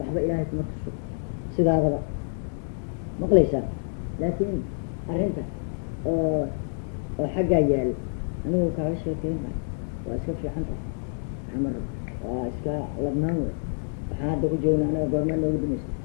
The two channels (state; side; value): silent; right; digital silence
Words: ilaahay kuma tuso sidaadaba maqlaysaa laakiin arrinta oo xaggaa yaal anigu kaaga sheekeyn maayo waa iska fiican tahay xamar waa iska ladnaan wey waxaan hadda ku joogna anaga goormaan noogu dambeysay